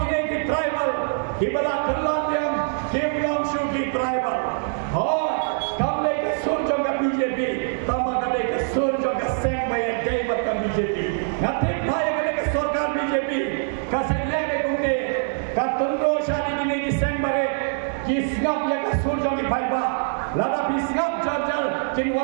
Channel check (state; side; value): silent; left; digital silence